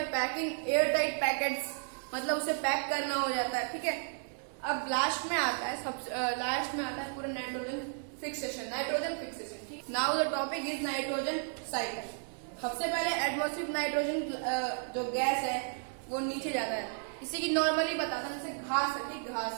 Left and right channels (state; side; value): silent; left; 55 dB below the other